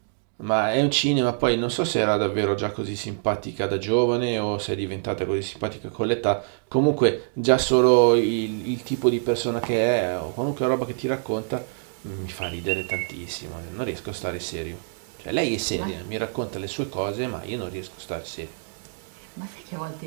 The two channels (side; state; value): left; silent; digital silence